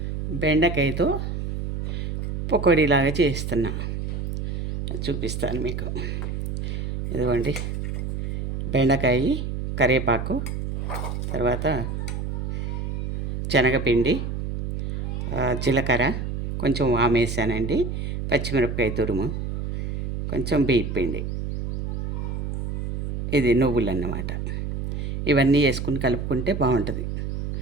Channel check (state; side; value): noise; right; hum, 3 dB below the sound